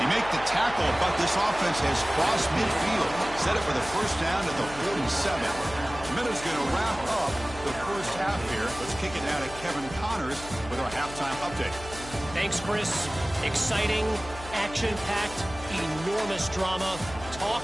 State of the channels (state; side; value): noise; left; hum, 14 dB below the sound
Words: He make the tackle, but this offense has crossed midfield. Set it for the 1st down at the 47. Minutes going to wrap up the 1st half here. Let's kick it down to Kevin Connors with our halftime update. Thanks, Chris. Exciting, action-packed, enormous drama. Talk